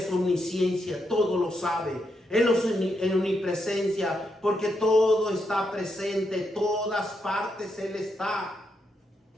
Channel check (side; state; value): both; normal; correlation 0.81